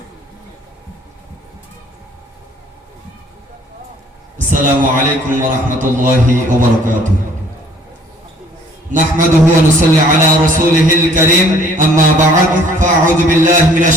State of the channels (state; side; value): normal; both; correlation 0.57